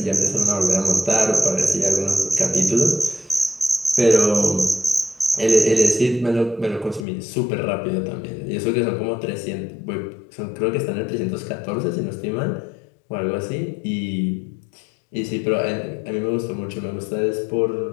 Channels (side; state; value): right; drops out; at 7.1 s